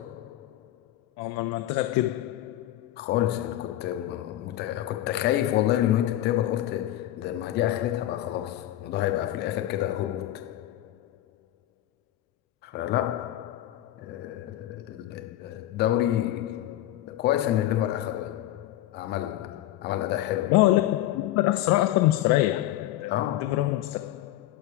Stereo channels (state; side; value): quieter; right; 13.9 dB